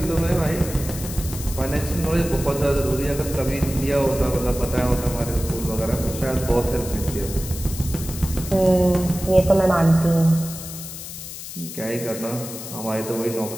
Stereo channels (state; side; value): noise; left; hiss, 10 dB below the sound